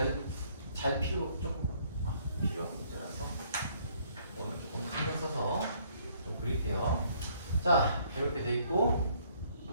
필요한 문제라서 오늘 조금 신경 써서 좀 그릴게요. 자 이렇게 돼 있고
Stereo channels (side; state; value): both; inverted; correlation -0.64